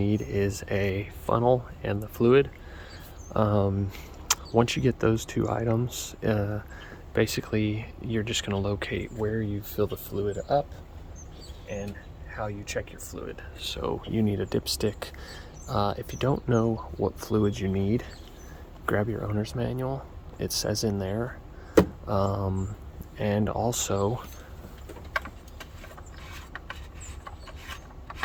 is a funnel and the fluid. Once you get those two items, basically you're just going to locate where you fill the fluid up and how you check your fluid. So you need a dipstick. If you don't know what fluid you need, grab your owner's manual. It says in there. And also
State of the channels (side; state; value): both; identical; correlation 1.00